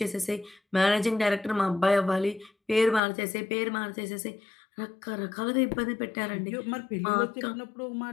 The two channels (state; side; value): drops out; right; at 3.0 s